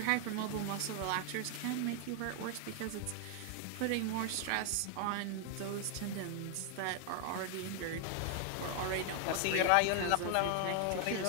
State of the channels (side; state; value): both; different; correlation 0.00